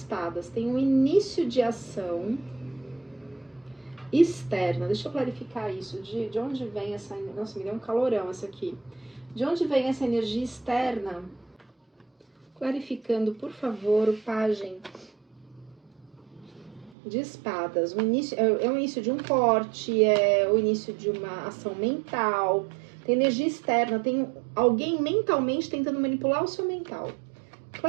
tem um início de ação externa. Deixa eu clarificar isso, de onde vem essa... Nossa, me deu um calorão essa aqui. De onde vem essa energia externa? Clarificando, por favor, o Pajem de Espadas. O início, é o início de um corte, é o início de uma ação mental. Tem energia externa, tem alguém mentalmente tentando manipular o seu mental.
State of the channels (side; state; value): left; drops out; at 16.9 s